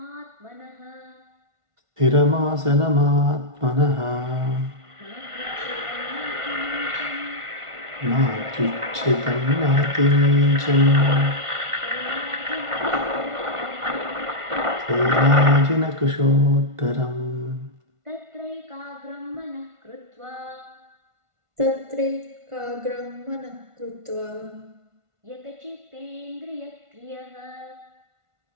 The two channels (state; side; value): late; left; 1.5 ms